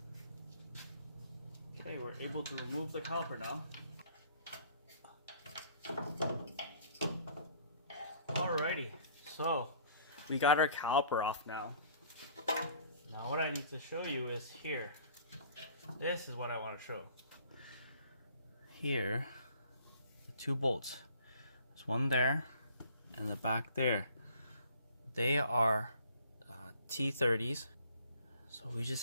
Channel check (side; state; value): both; inverted; correlation -0.55